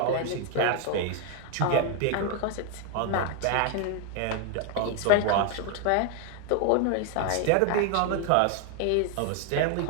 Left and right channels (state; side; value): different; both; correlation 0.00